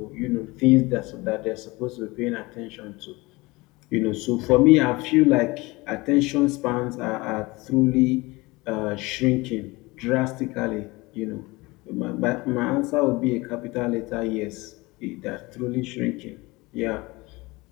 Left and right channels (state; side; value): quieter; right; 22.8 dB